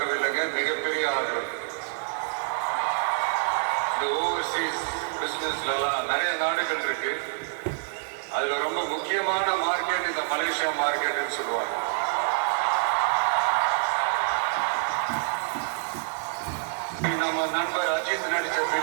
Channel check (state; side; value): silent; left; 60 dB below the other